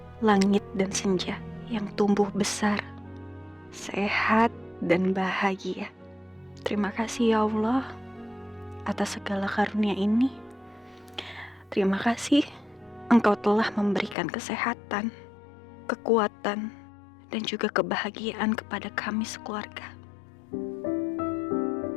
Langit, dan Senja yang tumbuh besar, sehat, dan bahagia. Terima kasih ya Allah atas segala karunia ini. Terima kasih Engkau telah memberikan kesehatan, kekuatan, dan juga kebahagiaan kepada kami sekeluarga.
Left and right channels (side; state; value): right; drops out; at 14.2 s